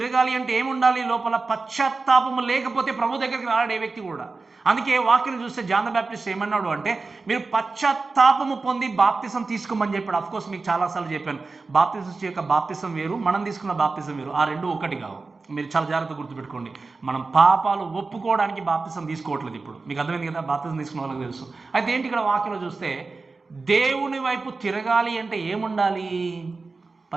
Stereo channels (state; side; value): quieter; left; 3.9 dB